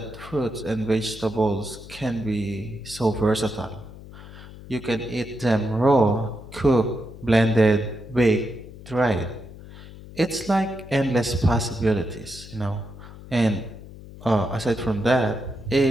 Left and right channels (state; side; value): noise; left; hum, 16 dB below the sound